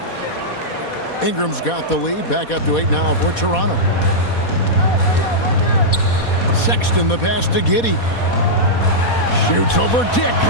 Ingram's got the lead, back up to 8 now for Toronto. Sexton the pass to Giddey. Shoots over Dick.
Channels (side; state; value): right; late; 4.2 ms